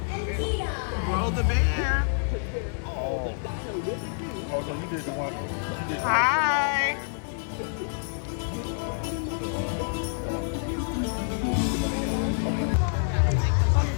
Roll the bear. Hi.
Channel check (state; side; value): silent; right; digital silence